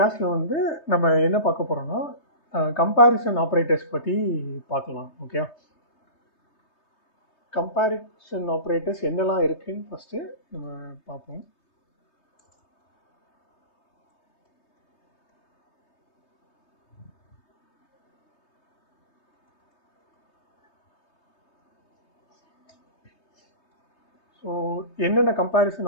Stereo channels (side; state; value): right; late; 3.2 ms